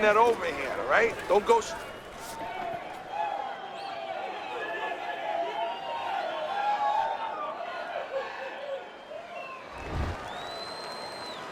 that overhand, all right? Don't go...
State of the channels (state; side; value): identical; both; correlation 1.00